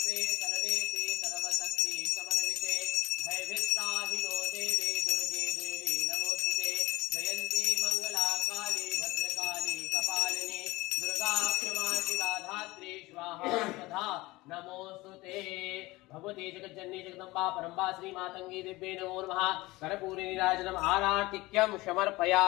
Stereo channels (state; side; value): quieter; right; 20.6 dB